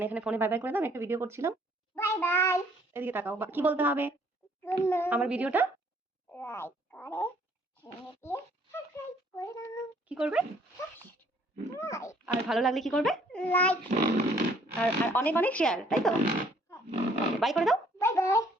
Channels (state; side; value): normal; both; correlation 0.62